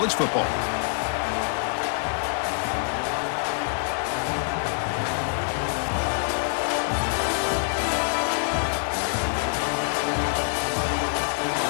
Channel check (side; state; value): right; silent; digital silence